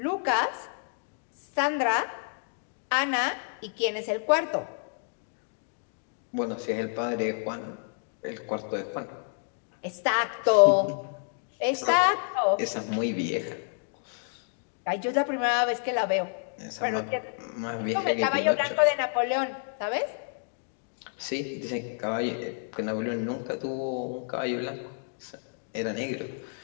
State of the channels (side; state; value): right; silent; digital silence